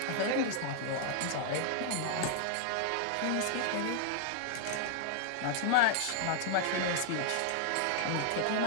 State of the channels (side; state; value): both; different; correlation -0.01